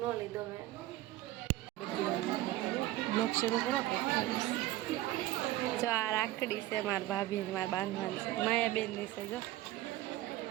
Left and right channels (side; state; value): left; quieter; 15.8 dB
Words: ન લીધો મેં। બ્લોગ શરૂ કરો। જો આ રાખડી છે મારા ભાભી મારા બાંધવાની છે, માયાબેનની છે। જો